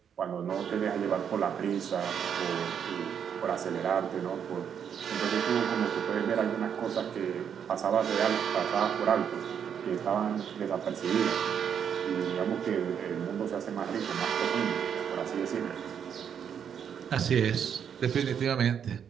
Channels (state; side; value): quieter; left; 8.0 dB